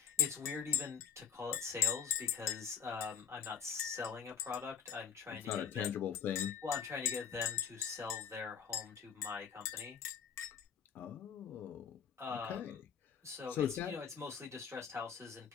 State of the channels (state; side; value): quieter; right; 7.8 dB